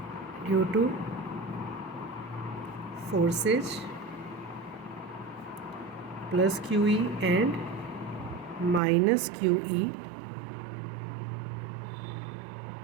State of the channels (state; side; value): drops out; left; at 8.8 s